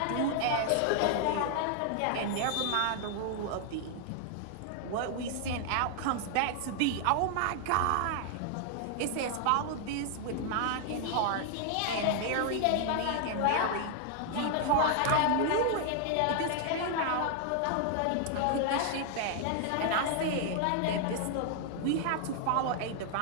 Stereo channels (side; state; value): both; different; correlation 0.00